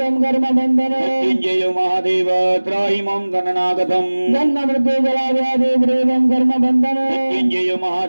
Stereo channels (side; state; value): both; inverted; correlation -1.00